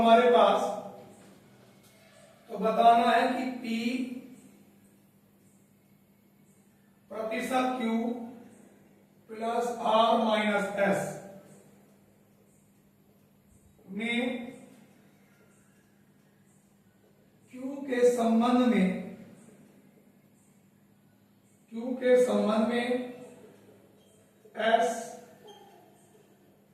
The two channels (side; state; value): both; identical; correlation 1.00